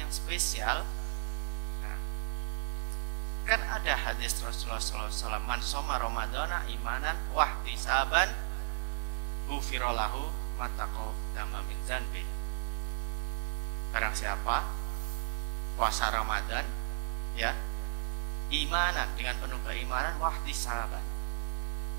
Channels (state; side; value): silent; left; 55 dB below the other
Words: spesial? Nah, kan ada hadis Rasulullah SAW, man soma Ramadana imanan wahtisaban ghufirallahu ma taqaddama min dzanbi. Barang siapa puasa Ramadan ya, imanan, dengan penuh keimanan, wahtisaban.